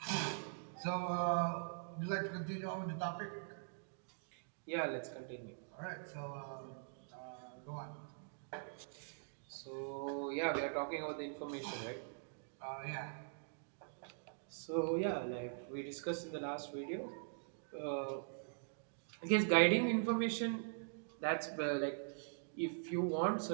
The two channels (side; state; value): left; silent; digital silence